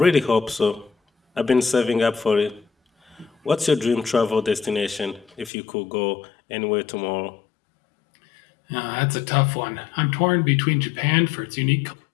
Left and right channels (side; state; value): right; drops out; at 5.5 s